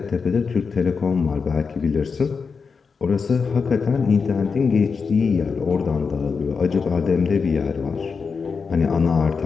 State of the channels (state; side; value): quieter; right; 5.3 dB